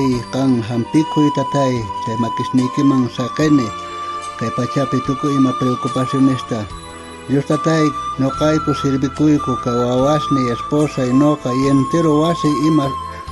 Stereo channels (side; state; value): both; identical; correlation 1.00